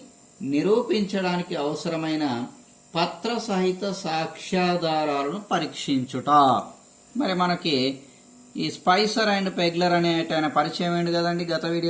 నిరూపించడానికి అవసరమైన పత్ర సహిత సాక్ష్యాధారాలను పరీక్షించుట. మరి మనకి ఈ స్పైసర్ అండ్ పెగ్లర్ అనే ఆయన పరిచయం ఏంటి కదండి గత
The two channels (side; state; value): both; identical; correlation 1.00